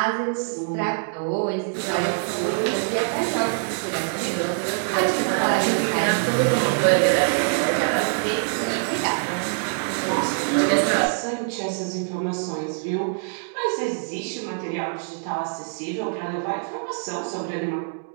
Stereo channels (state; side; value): silent; left; digital silence